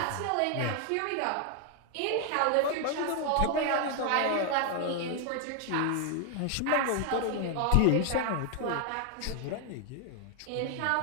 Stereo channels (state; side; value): different; both; correlation 0.00